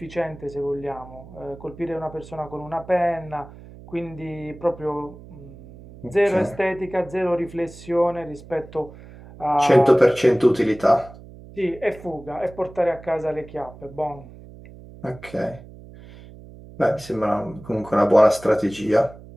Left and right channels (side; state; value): right; noise; hum, 18 dB below the sound